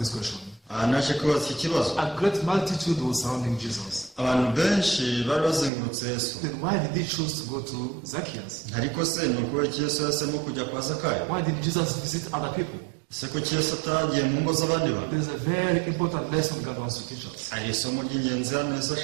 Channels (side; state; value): left; drops out; at 5.7 s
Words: question. Naje kubaza iki kibazo. A great multitude was surrounding Jesus. Abantu benshi bari bazengurutse Yesu. Then why did he choose to go to Zacchaeus? Ariko se ni ukubera iki Yesu yahisemo kujya kwa Zakayo? Why did Jesus visit other people? Se kuki Yesu atagiye mu ngo z'abandi bantu? There's a very important lesson God wants to teach us. Hari isomo ry'ingenzi hano Yesu